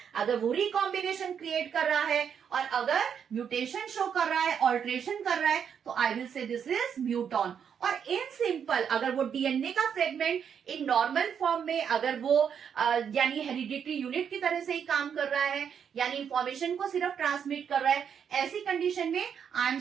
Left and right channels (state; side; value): quieter; left; 7.7 dB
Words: अगर वो रिकॉम्बिनेशन क्रिएट कर रहा है और अगर म्यूटेशन शो कर रहा है, ऑल्ट्रेशन कर रहा है, तो I will say this is muton. और इन सिंपल अगर वो डीएनए का फ्रेगमेंट इन नॉर्मल फॉर्म में अगर वो यानी हेरिडिटरी यूनिट की तरह से ही काम कर रहा है, यानी इंफॉर्मेशन को सिर्फ ट्रांसमिट कर रहा है, ऐसी कंडीशन में I am